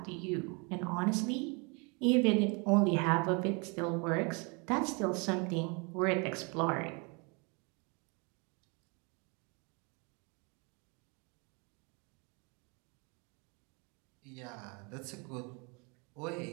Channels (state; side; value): quieter; left; 31.8 dB